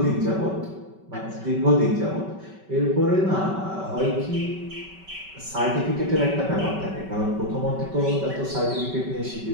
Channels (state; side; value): late; left; 5.2 ms